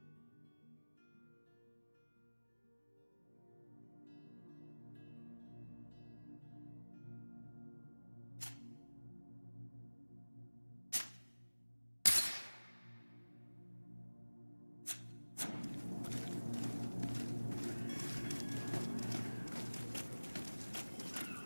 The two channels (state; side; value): inverted; both; correlation -1.00